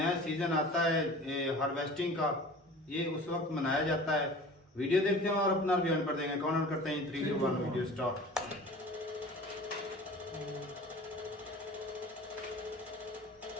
सीजन आता है हार्वेस्टिंग का, ये उस वक्त मनाया जाता है। वीडियो देखते हैं और अपना रिव्यू पर देंगे। कमेंट करते हैं 3 2 1 वीडियो स्टार्ट।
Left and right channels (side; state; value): both; normal; correlation 0.41